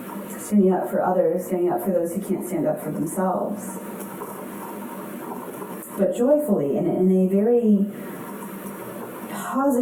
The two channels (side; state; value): both; identical; correlation 1.00